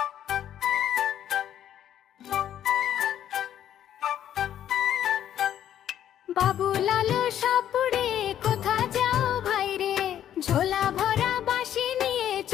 বাবু লালু সাপুড়ে কোথা যাও ভাই রে, ঝোলা ভরা বাঁশি নিয়ে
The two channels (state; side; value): quieter; right; 10.7 dB